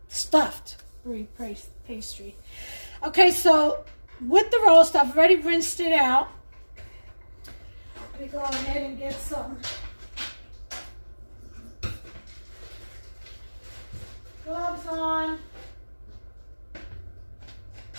stuffed brie pastry. Okay, so with the roast, I've already rinsed it out. Let me go ahead and get some gloves on.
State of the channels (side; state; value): both; inverted; correlation -1.00